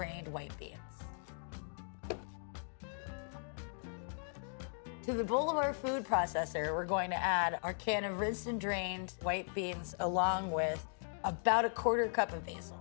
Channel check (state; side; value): silent; right; digital silence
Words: white beans. To the bowl of our food processor, we're going to add our can of rinsed and drained white beans along with about 1/4 cup of basil.